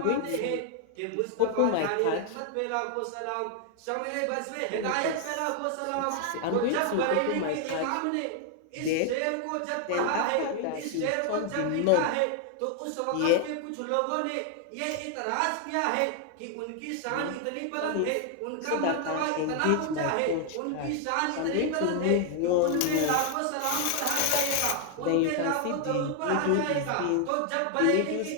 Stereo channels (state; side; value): different; both; correlation 0.00